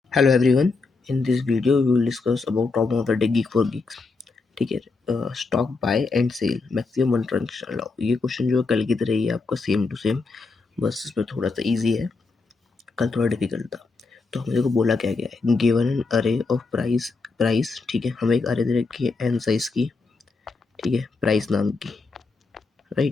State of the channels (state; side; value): quieter; right; 4.1 dB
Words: Hello everyone. In this video we will discuss about top of the day gig for gigs. ठीक है। Stock buy and sell maximum one transaction allow. ये question जो है कल की तरह ही है आपका, सेम टू सेम, बस इसमें थोड़ा सा इजी है, कल थोड़ा डिफिकल्ट था। तो हमने को बोला क्या गया है, गिवन एन अरे ऑफ प्राइस। ठीक है, हमें एक अरे दे रखी है एन साइज की, ठीक है, प्राइस नाम की,